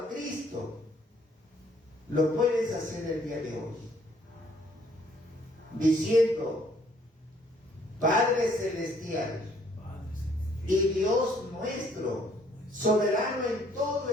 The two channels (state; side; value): normal; both; correlation 0.64